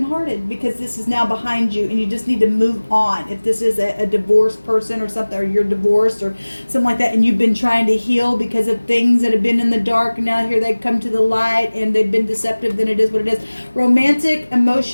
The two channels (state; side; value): inverted; both; correlation -1.00